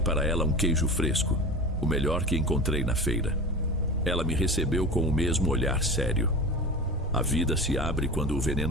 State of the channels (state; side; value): normal; both; correlation 0.31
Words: para ela um queijo fresco, o melhor que encontrei na feira. Ela me recebeu com o mesmo olhar sério. A vida se abre quando o